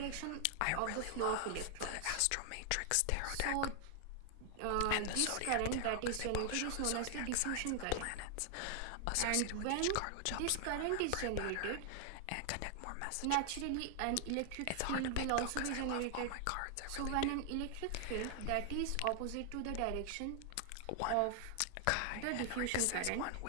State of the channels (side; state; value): both; different; correlation 0.00